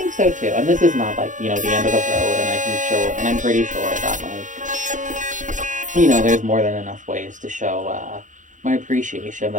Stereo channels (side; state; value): left; late; 0.37 ms